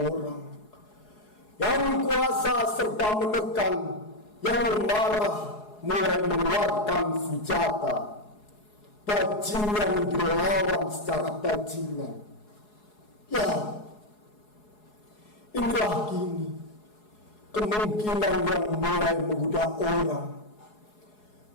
Yang kuasa serta menekan, yang marah mulai mengeluarkan senjata. Bajingan dilawan secara bajingan. Ya, inilah kini kemungkinan yang mulai menggoda orang.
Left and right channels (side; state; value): right; late; 4.8 ms